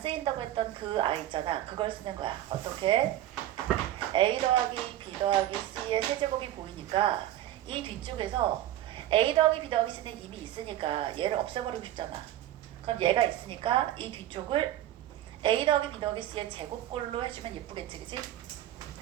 쓰인다고 했던 그 아이 있잖아. 그걸 쓰는 거야. 어떻게? a 더하기 b 더하기 c의 세제곱이 보이니까 이 뒤쪽에서 a 더하기 b 더하기 c는 이미 있으니까 얘를 없애버리고 싶잖아. 그럼 얘가 있으니까 이 뒤쪽을 a 더하기 b 더하기 c의 제곱꼴로 해주면 예쁘겠지, 그치?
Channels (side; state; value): left; quieter; 13.2 dB